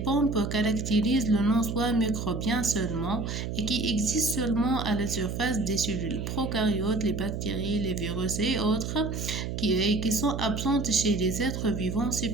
caractérisent le non-soi microbien seulement et qui existent seulement à la surface des cellules prokaryotes, les bactéries, les virus et autres qui sont absentes chez les êtres vivants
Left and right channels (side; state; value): right; noise; hum, 4 dB below the sound